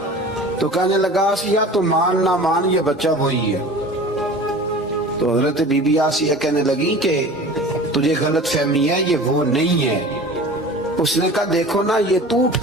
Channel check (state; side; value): normal; both; correlation 0.40